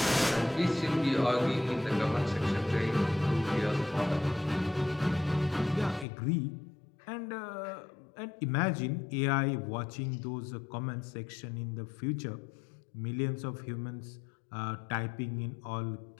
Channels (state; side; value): drops out; right; at 6.1 s